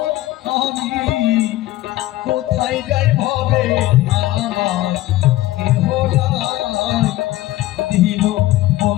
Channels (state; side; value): quieter; right; 16.2 dB